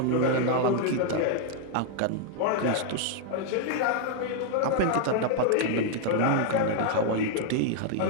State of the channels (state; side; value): different; both; correlation -0.01